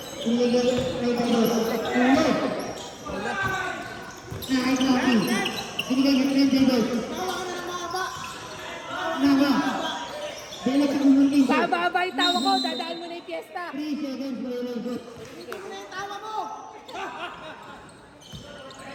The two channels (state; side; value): identical; both; correlation 1.00